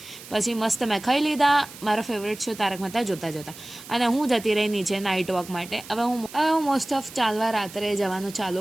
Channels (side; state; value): right; noise; hiss, 16 dB below the sound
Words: પછી મસ્ત મેં ખાઈ લીધા. મારો ફેવરેટ શો તારક મહેતા જોતા જોતા. અને હું જતી રહી નીચે નાઇટ વોક માટે. હવે હું મોસ્ટ ઓફ ચાલવા રાત્રે જવાનું